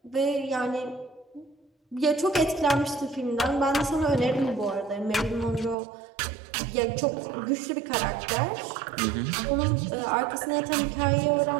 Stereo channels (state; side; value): drops out; left; at 5.8 s